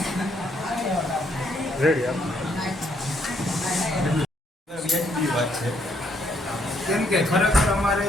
વ્યાજબી વાત છે કેમ કે ખરેખર અમારે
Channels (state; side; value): normal; both; correlation 0.71